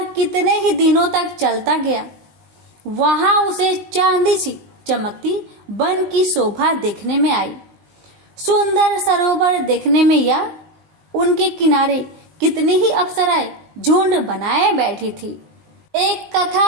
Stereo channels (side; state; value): left; late; 20 ms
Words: कितने ही दिनों तक चलता गया। वहां उसे चांदी सी चमकती वन की शोभा देखने में आई। सुंदर सरोवर देखने में या उनके किनारे कितनी ही अप्सराएं झुंड बनाए बैठी थी। एक